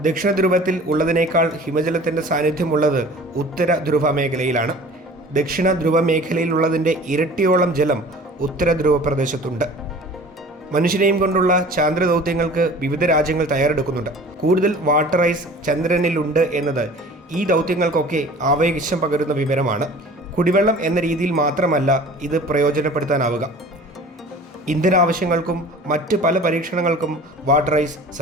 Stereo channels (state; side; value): normal; both; correlation 0.44